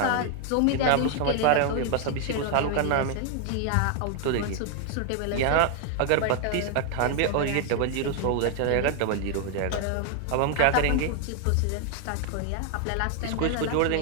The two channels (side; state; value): both; different; correlation 0.00